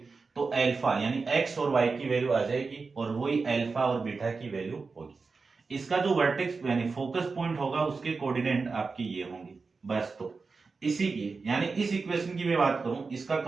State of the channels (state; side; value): quieter; left; 4.4 dB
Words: तो अल्फा यानी x और y की वैल्यू आ जाएगी और वही अल्फा और बीटा की वैल्यू होगी। इसका जो वर्टेक्स यानी फोकस पॉइंट होगा उसके कोऑर्डिनेट आपके ये होंगे बस। तो इसी की यानी इस इक्वेशन की मैं बात करूं, इसका